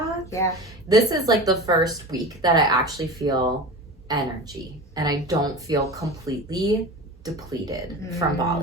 This is like the first week that I actually feel energy, and I don't feel completely depleted from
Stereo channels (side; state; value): both; normal; correlation 0.31